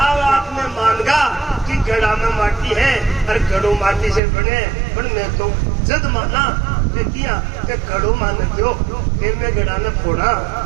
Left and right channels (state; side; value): drops out; left; at 4.2 s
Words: अब आपने मानगा कि घड़ा में माटी है और घड़ो माटी से बने, पर मैं तो जद माना किया कि घड़ो मान दो, फिर मैं घड़ा ने फोड़ा,